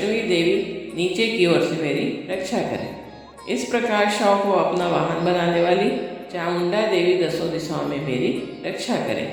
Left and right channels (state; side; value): identical; both; correlation 1.00